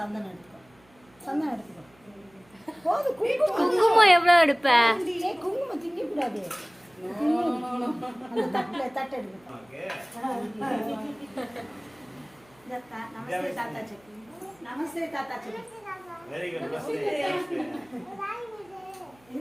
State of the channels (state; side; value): noise; right; hum, 30 dB below the sound